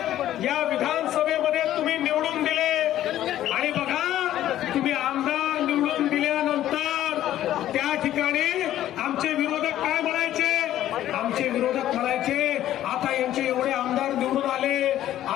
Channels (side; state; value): right; quieter; 12.7 dB